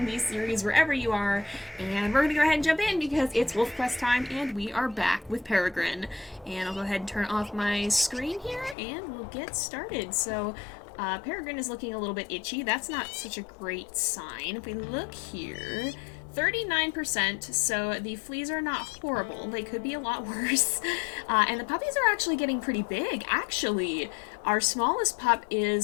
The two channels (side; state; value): right; drops out; at 8.8 s